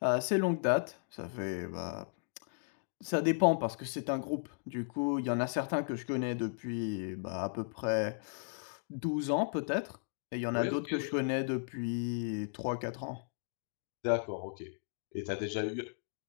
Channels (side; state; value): right; silent; digital silence